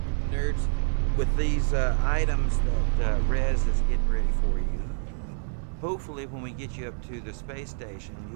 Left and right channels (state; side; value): silent; left; digital silence